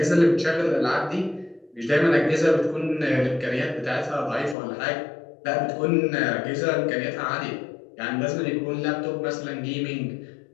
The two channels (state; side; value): drops out; right; at 4.5 s